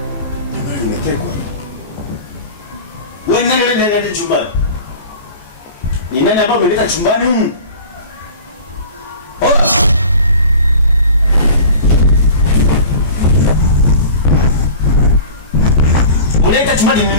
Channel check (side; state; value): both; inverted; correlation -0.39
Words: Nani chumbani? Ni nani hapa umeleta chumbani humu? Unaleta chumbani ni